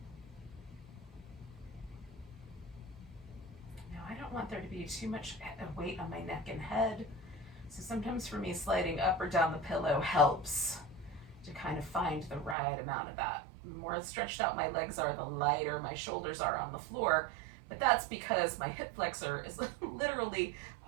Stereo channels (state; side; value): drops out; left; at 12.6 s